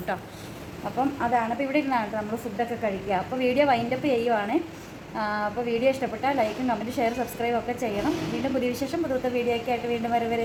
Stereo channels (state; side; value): identical; both; correlation 1.00